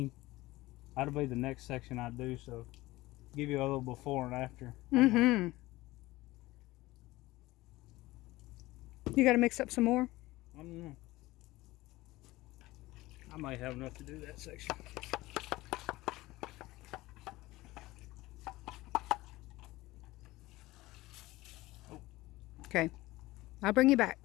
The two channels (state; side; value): quieter; right; 18.8 dB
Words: That'll be the next section I do. So give you a little before and after. Mm-hmm. You got to mix up some more? I don't know. I might have enough to do that section. Okay. I'll bring you back.